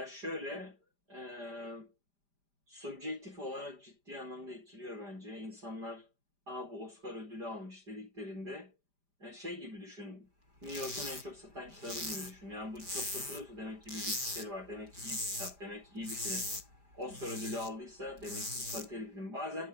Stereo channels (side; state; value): left; late; 5.0 ms